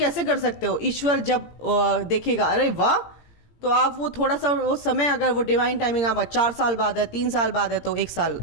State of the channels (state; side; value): late; right; 17 ms